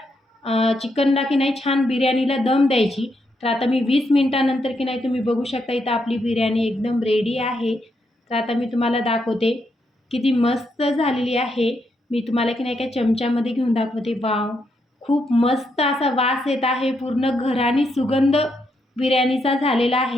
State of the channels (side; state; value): both; normal; correlation 0.79